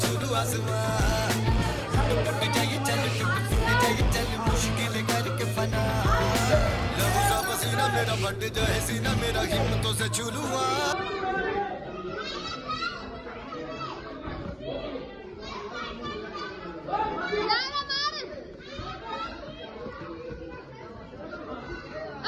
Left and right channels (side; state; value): both; identical; correlation 1.00